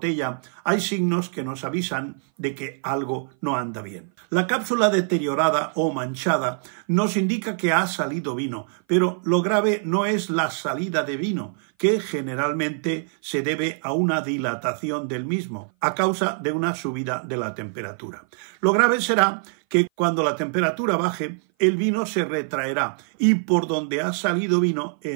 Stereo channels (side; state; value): left; silent; 58 dB below the other